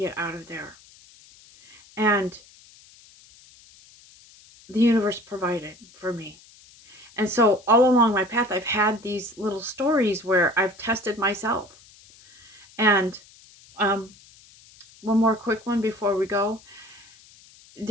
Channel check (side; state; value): left; noise; hiss, 25 dB below the sound